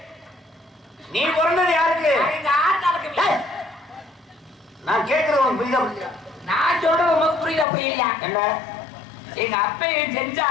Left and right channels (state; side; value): drops out; right; at 7.7 s